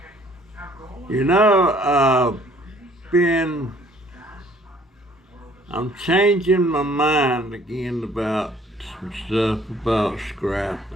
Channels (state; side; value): normal; both; correlation 0.58